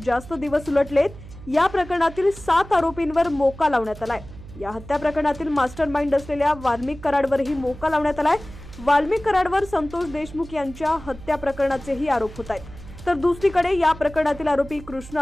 जास्त दिवस उलटलेत। या प्रकरणातील 7 आरोपींवर मोका लावण्यात आलाय। या हत्या प्रकरणातील मास्टरमाइंड असलेल्या वाल्मिक कराडवरही मोका लावण्यात आलाय। वाल्मिक कराडवर संतोष देशमुख यांच्या हत्या प्रकरणाचेही आरोप होत आहेत। तर दुसरीकडे या प्रकरणातील आरोपी कृष्ण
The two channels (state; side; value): noise; right; hum, 16 dB below the sound